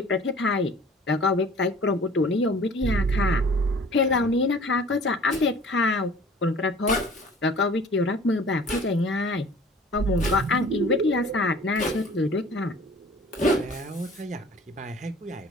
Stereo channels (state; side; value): normal; both; correlation 0.48